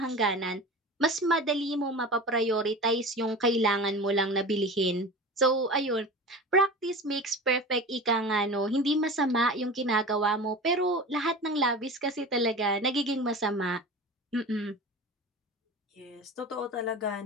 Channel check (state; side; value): normal; both; correlation 0.32